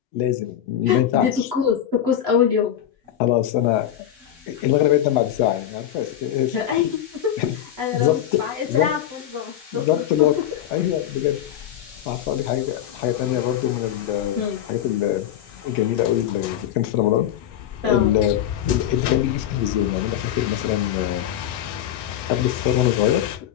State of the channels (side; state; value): right; quieter; 10.9 dB